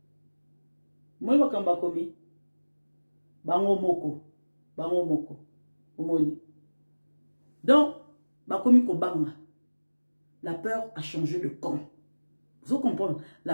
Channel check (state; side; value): inverted; both; correlation -1.00